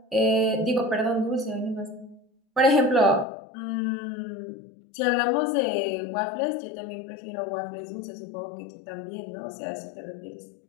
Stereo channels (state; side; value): drops out; right; at 3.2 s